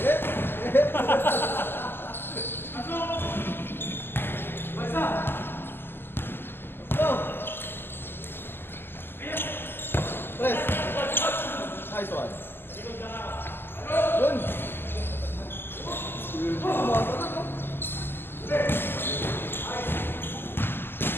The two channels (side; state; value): right; late; 0.10 ms